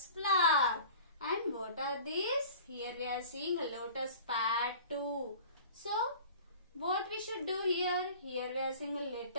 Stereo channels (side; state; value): both; inverted; correlation -0.42